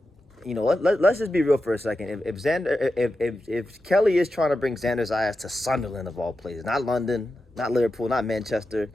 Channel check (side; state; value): both; normal; correlation 0.90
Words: you know, let's just be real for a second. If Kelly is trying to bring Xander Zayas to Sunderland of all places, not London, not Liverpool, not Manchester,